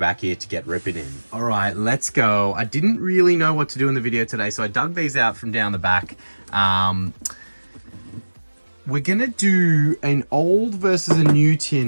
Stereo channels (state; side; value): inverted; both; correlation -1.00